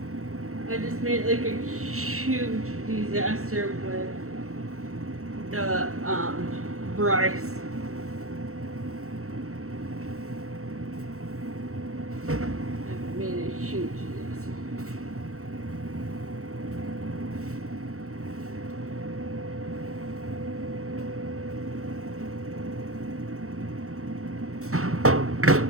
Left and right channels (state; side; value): late; left; 0.64 ms